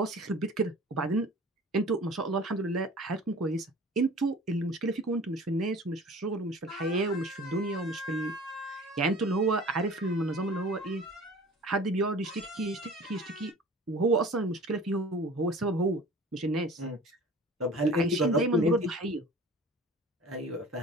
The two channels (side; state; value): both; normal; correlation 0.44